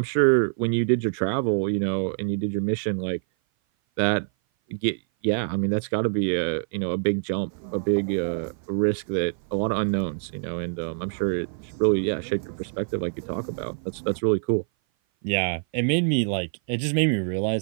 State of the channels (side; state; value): left; silent; 57 dB below the other